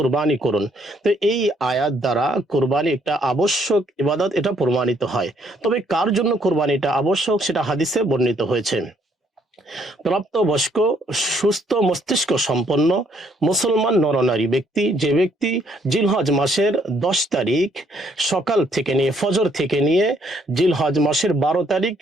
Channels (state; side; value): normal; both; correlation 0.68